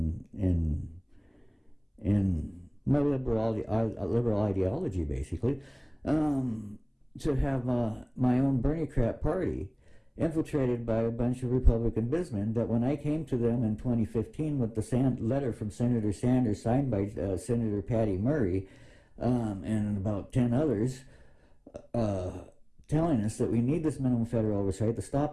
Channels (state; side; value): identical; both; correlation 1.00